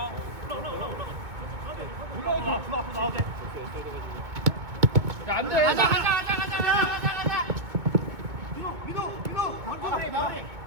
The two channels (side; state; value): left; late; 2.2 ms